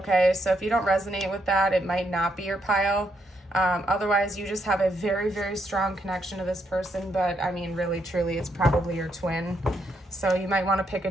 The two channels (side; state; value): both; normal; correlation 0.77